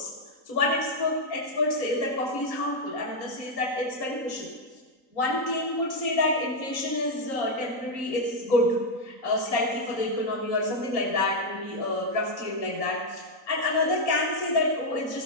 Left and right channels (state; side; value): late; right; 3.9 ms